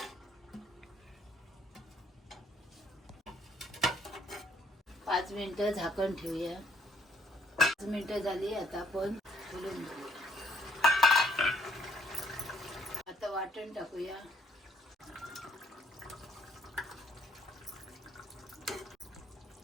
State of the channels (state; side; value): normal; both; correlation 0.66